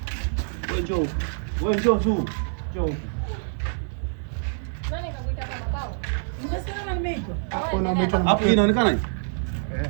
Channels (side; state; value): left; silent; digital silence